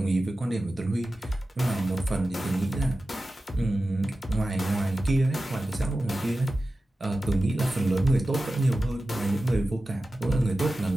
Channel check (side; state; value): both; normal; correlation 0.94